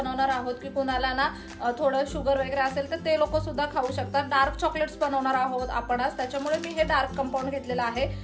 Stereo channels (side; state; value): both; identical; correlation 1.00